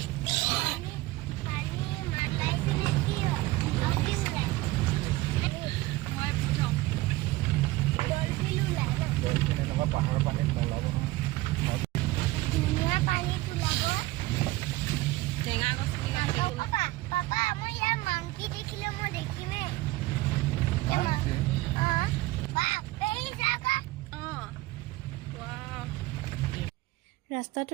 পাহাৰ পানীত মলাব ধুনীয়া পানী ওলাব টেঙা গছ পাপা মই ইয়াৰ মাংকি দেখিলে মই দেখিমে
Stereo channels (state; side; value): quieter; left; 18.9 dB